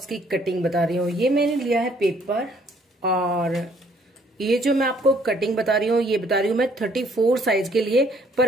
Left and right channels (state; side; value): normal; both; correlation 0.63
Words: की कटिंग बता रही हूँ। ये मैंने लिया है पेपर और ये जो मैं आपको कटिंग बता रही हूँ ये बता रही हूँ मैं 34 साइज के लिए,